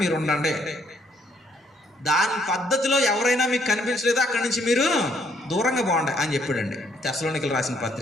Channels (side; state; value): both; normal; correlation 0.68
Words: మీరు ఉండండి. దాని పద్ధతిలో ఎవరైనా మీకు కనిపించలేదో అక్కడి నుంచి మీరు దూరంగా బాగుండే అని చెప్పాడండి. తెస్సలోనికీయులకు రాసిన